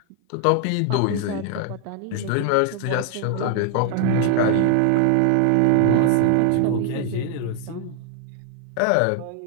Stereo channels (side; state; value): both; different; correlation 0.00